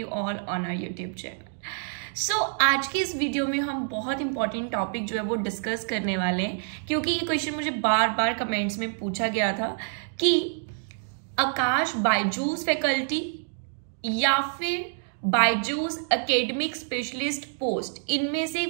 all on our YouTube channel. So आज की इस video में हम बहुत important topic जो है वो discuss करने वाले हैं, क्योंकि ये क्वेश्चन मुझे बार बार कमेंट्स में पूछा गया था कि आकाश बायजूस फैकल्टी या फिर बायजूस एकेडमिक स्पेशलिस्ट पोस्ट, इनमें से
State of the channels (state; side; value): silent; left; digital silence